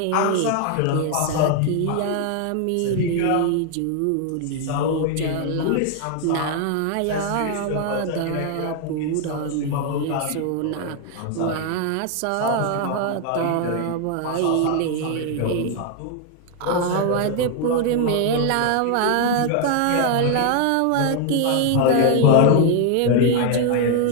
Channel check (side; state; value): both; different; correlation 0.00